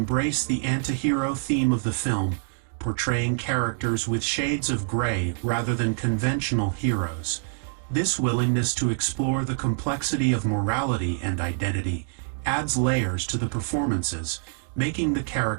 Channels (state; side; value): silent; left; digital silence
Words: the anti-hero theme of the film, portraying characters with shades of gray rather than conventional heroes. This willingness to explore the complexity of morality and identity adds layers to the performances, making the